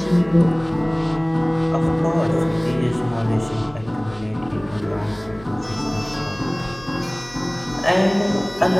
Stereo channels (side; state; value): left; noise; hum, 21 dB below the sound